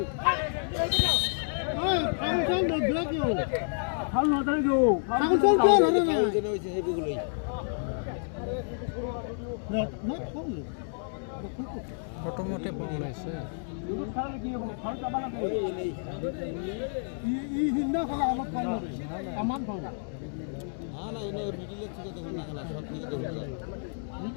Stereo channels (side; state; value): right; silent; digital silence